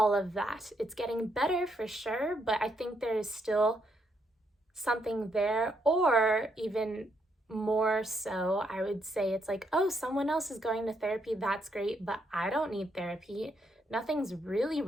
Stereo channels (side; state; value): both; normal; correlation 0.76